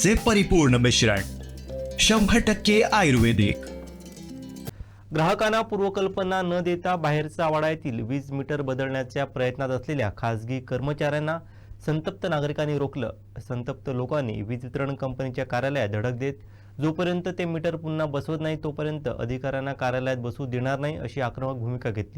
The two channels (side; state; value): both; identical; correlation 1.00